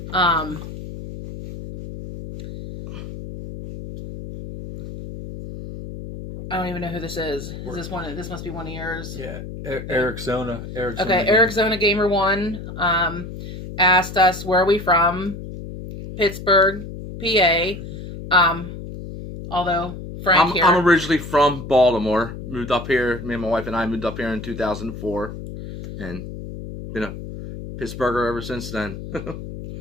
I don't even know who this is. Is this one? This must be one of yours. Yeah, Eric Zona. Okay, Eric Zona Gamer 1 asked us where are we from. Pittsburgh, PA. Although Frank here. I'm originally from Baltimore. Moved up here. Me and my wife and I moved up here in 2004, and been a Pittsburgher ever since then.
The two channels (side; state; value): left; noise; hum, 10 dB below the sound